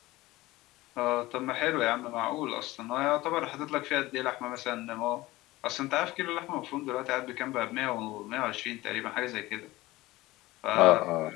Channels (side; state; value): right; quieter; 18.8 dB